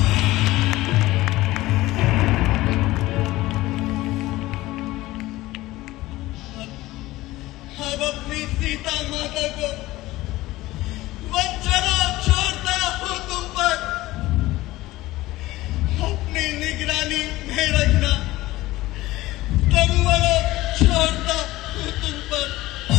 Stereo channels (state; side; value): quieter; right; 17.9 dB